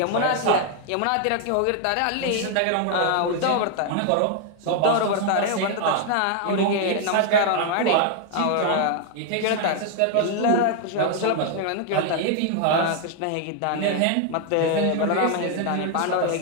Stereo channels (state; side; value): different; both; correlation 0.00